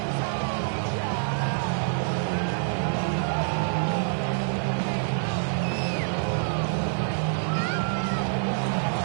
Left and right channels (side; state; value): left; silent; 61 dB below the other